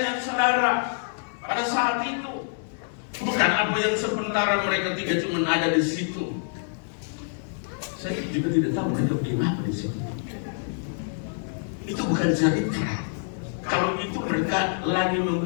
dan saudara pada saat itu. Bukan apa yang sementara mereka tiga cuma ada di situ. Saya juga tidak tahu mereka bikin apa di situ. Itu bukan cerita. Kalau itu mereka lagi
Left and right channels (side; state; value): right; silent; digital silence